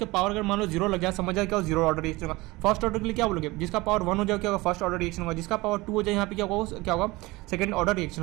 पावर अगर मान लो जीरो लग जाए, समझ जाए क्या हो, जीरो ऑर्डर रिएक्शन होगा। फर्स्ट ऑर्डर के लिए क्या बोलोगे, जिसका पावर वन हो जाए क्या होगा, फर्स्ट ऑर्डर रिएक्शन होगा। जिसका पावर टू हो जाए यहाँ पे क्या होगा, सेकंड ऑर्डर रिएक्शन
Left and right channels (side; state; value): left; quieter; 21.5 dB